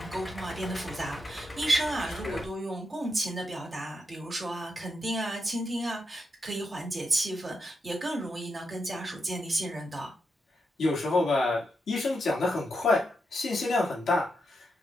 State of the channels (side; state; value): both; normal; correlation 0.84